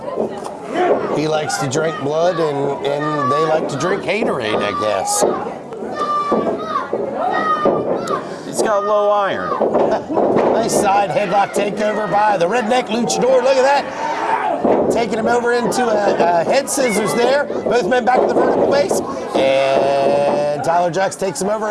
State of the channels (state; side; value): identical; both; correlation 1.00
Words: he likes to drink blood, and they like to drink haterade, I guess. He's got low iron. Nice side headlock takeover by the Redneck Luchador. Look at that. Taking him over into a head scissors there. Both men back to the vertical base. And Tyler Jaxx takes him over,